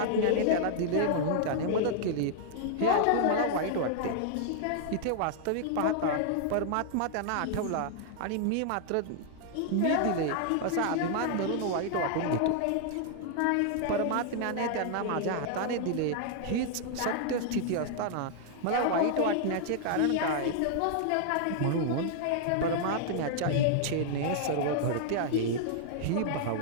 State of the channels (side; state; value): both; different; correlation -0.01